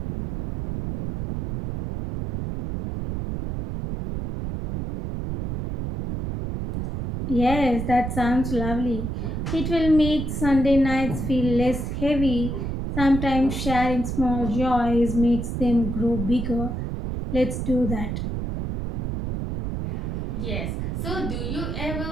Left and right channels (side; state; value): right; noise; rumble, 4 dB below the sound